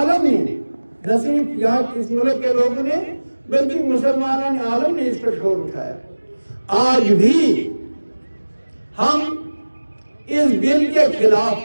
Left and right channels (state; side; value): inverted; both; correlation -1.00